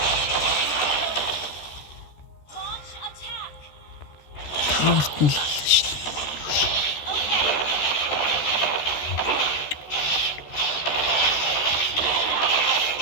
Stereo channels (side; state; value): right; late; 13 ms